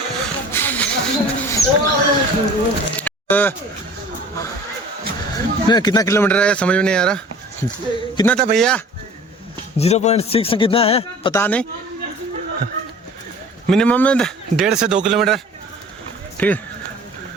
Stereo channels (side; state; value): both; normal; correlation 0.45